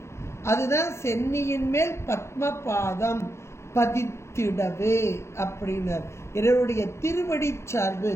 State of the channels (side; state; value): right; late; 0.13 ms